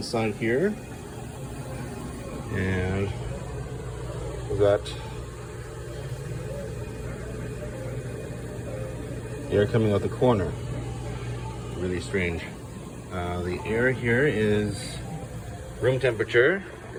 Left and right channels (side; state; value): both; identical; correlation 1.00